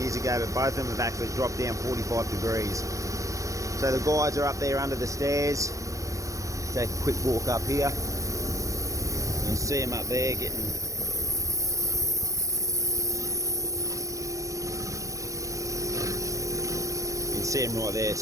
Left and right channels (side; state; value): left; late; 0.16 ms